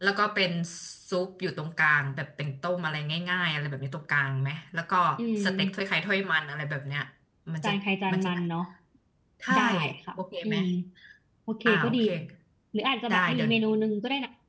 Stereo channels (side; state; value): both; identical; correlation 1.00